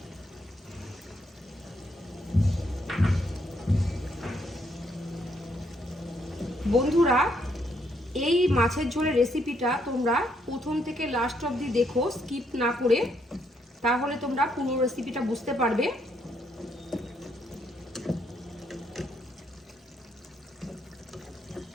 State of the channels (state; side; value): normal; both; correlation 0.73